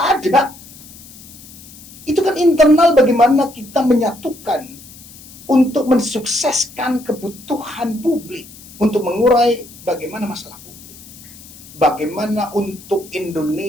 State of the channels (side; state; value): left; noise; hiss, 19 dB below the sound